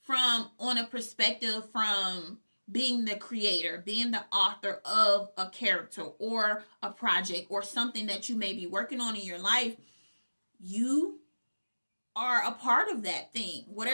on a perspective from being the creator, being the author of a character or a project or something that you may be working on in your life. You are a part of that thing.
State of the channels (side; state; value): both; inverted; correlation -1.00